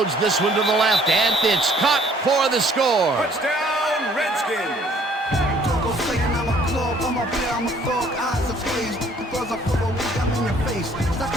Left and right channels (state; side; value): normal; both; correlation 0.59